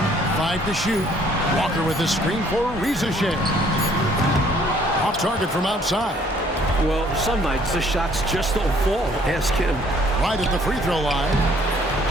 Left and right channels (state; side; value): normal; both; correlation 0.61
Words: 5 to shoot. Walker with the screen for Ricochet. Off target from outside. Well, some nights the shots just don't fall. Ask him. Right at the free throw line.